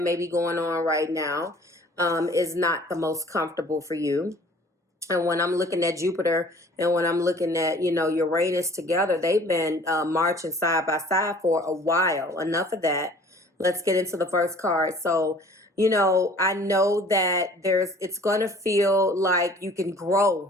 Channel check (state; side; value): normal; both; correlation 0.51